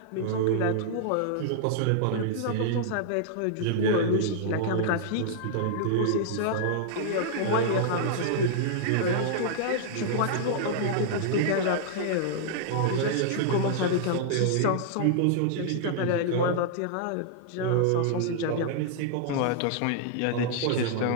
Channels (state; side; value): different; both; correlation -0.01